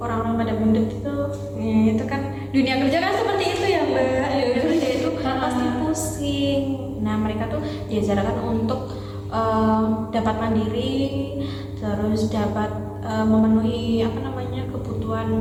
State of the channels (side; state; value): both; identical; correlation 1.00